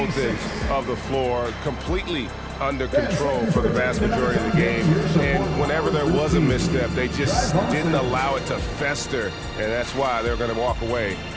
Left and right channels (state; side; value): identical; both; correlation 1.00